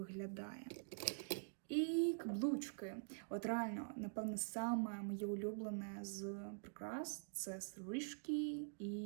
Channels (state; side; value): silent; left; digital silence